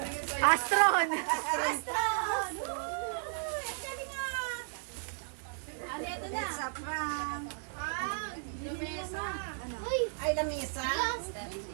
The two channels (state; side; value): silent; left; 55 dB below the other